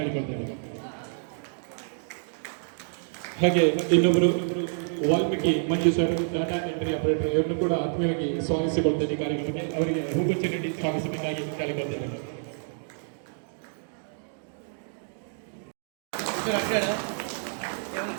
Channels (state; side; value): silent; left; digital silence